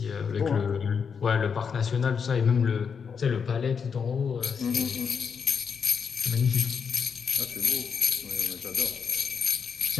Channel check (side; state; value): right; quieter; 6.4 dB